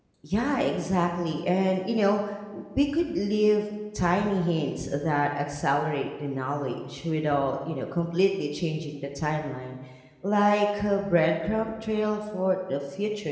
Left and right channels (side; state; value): both; identical; correlation 1.00